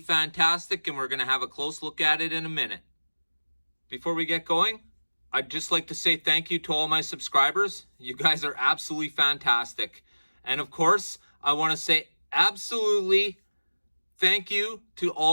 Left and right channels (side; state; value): both; inverted; correlation -1.00